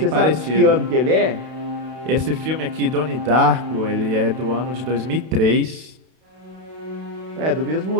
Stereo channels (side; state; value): left; late; 32 ms